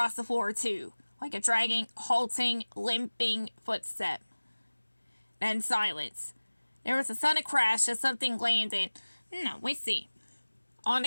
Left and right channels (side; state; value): both; inverted; correlation -1.00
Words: the floor too, like a dragging, halting, limping footstep. Then silence. There was a sudden crash as something landed, on